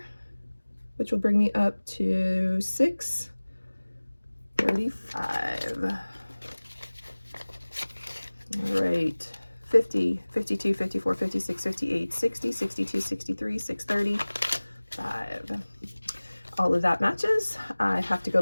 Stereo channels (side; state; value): both; inverted; correlation -1.00